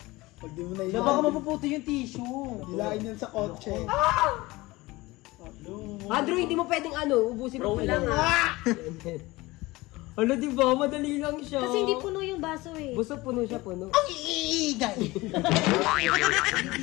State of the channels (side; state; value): right; quieter; 20.8 dB